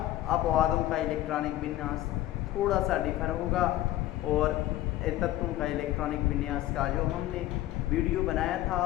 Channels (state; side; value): quieter; right; 14.8 dB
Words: अपवादों का इलेक्ट्रॉनिक विन्यास थोड़ा सा डिफर होगा और तत्वों का इलेक्ट्रॉनिक विन्यास का जो हमने वीडियो बनाया